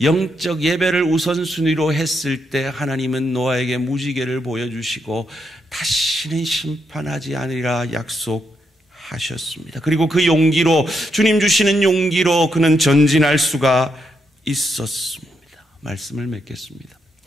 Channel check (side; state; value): both; normal; correlation 0.80